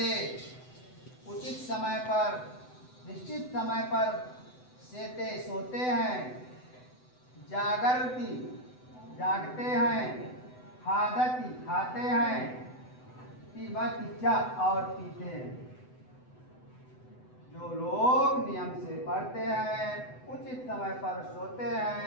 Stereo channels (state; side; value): late; right; 7.9 ms